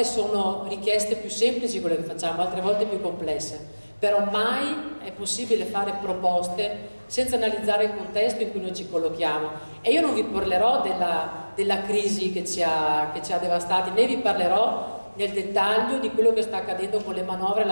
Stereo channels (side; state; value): both; inverted; correlation -1.00